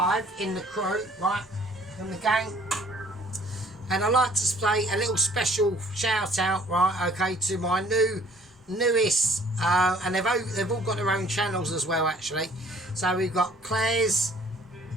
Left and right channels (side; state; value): both; normal; correlation 0.57